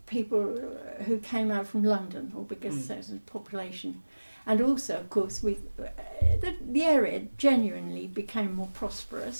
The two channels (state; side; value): inverted; both; correlation -1.00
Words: people who came out from London, or bigger centres of population, and also, of course, with the area genuinely became more